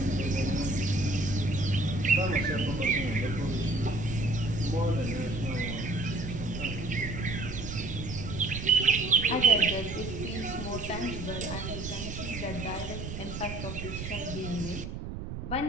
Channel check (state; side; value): noise; right; rumble, 7 dB below the sound